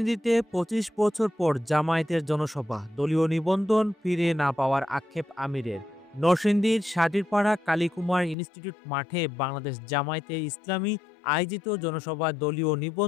২৫ বছর পর জামায়াতের জনসভা, দলীয় নিবন্ধন ফিরে না পাওয়ার আক্ষেপ আমিরের। নরসিংদীর সাটিরপাড়া কালীকুমার ইনস্টিটিউট মাঠে বাংলাদেশ জামায়াতে ইসলামী আয়োজিত জনসভায় দলীয়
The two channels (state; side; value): drops out; right; at 8.3 s